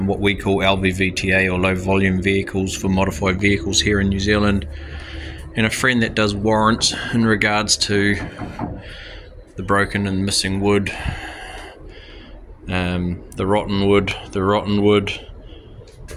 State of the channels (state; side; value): identical; both; correlation 1.00